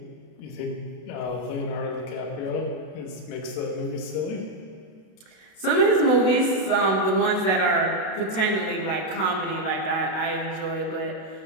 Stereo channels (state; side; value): late; right; 32 ms